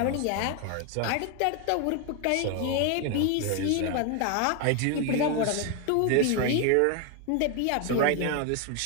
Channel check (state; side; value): different; both; correlation 0.01